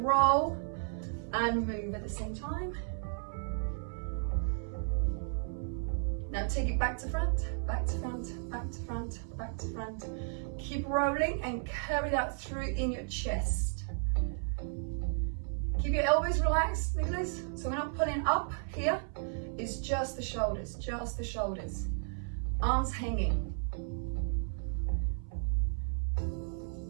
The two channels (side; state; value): left; silent; 55 dB below the other